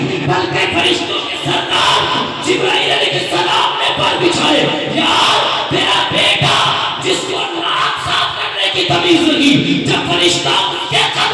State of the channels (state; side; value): identical; both; correlation 1.00